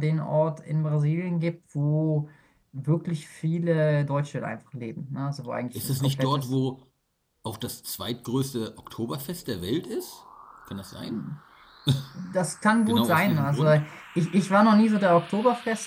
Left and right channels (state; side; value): identical; both; correlation 1.00